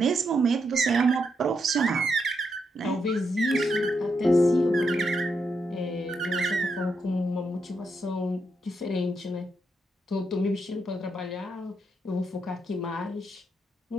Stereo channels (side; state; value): both; normal; correlation 0.81